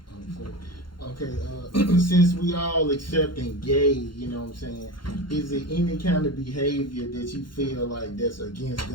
since we all accepting gay, you know what I'm saying, is there any kind of behavior that you feel like that's against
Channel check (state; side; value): late; right; 0.72 ms